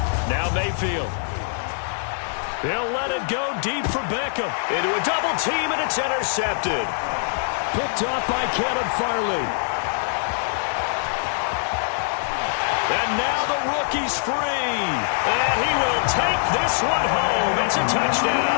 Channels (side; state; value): right; silent; digital silence